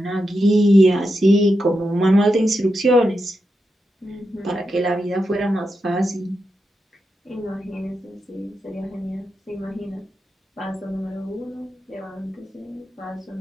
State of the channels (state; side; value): normal; both; correlation 0.87